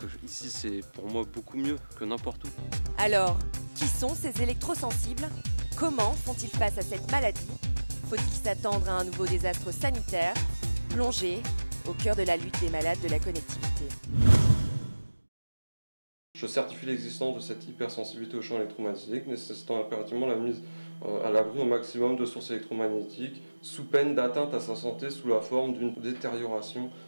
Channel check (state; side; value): inverted; both; correlation -1.00